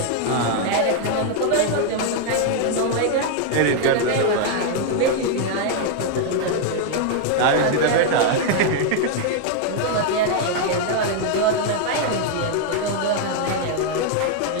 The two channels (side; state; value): both; different; correlation 0.00